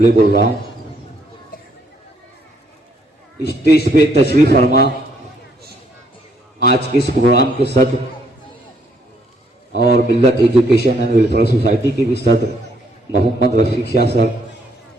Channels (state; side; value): normal; both; correlation 0.69